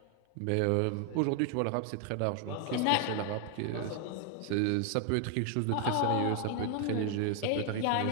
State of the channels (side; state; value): both; different; correlation 0.00